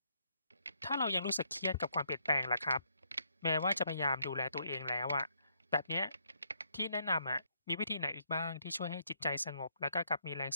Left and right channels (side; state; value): both; inverted; correlation -0.73